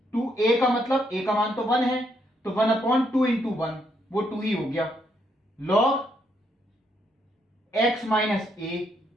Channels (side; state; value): both; normal; correlation 0.75